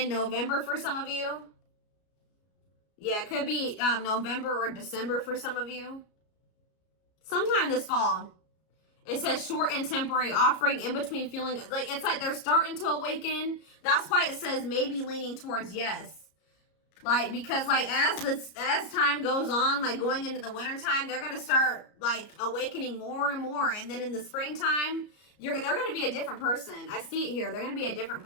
November for some of you. Yeah, it could be November or December for some of you. Sometime this fall. It says short and temporary offering in between feeling. Like it's like they're starting to awaken. That's why it says maybe leaning towards yes. Like, because like as time goes on, like going into the winter time, they're gonna start like awakening more and more. And then in the springtime, they're gonna be a different person. I see it here. They're gonna be a different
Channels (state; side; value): late; right; 33 ms